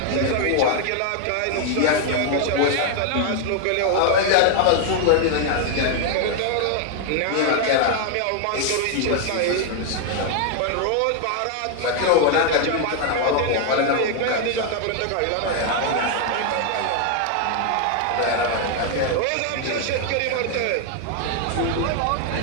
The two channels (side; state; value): both; different; correlation 0.00